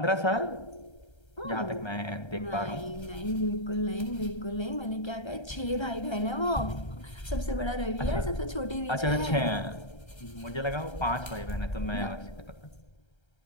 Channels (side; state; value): right; late; 1.3 ms